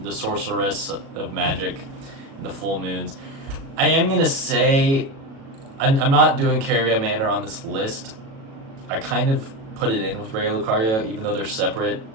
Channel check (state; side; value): late; left; 36 ms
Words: sorceress of magic in the full moons. I am gonna say I'm not doing Caria Manor on this list. I kind of put it in with Raya Lucaria, even though they're separate